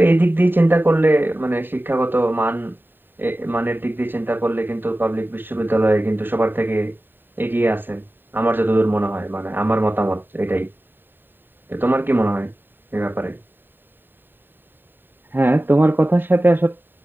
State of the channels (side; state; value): left; late; 0.094 ms